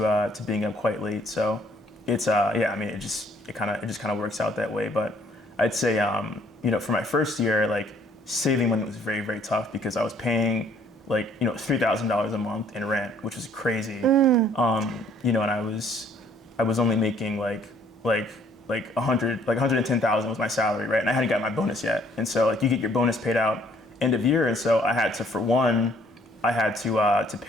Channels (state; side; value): normal; both; correlation 0.62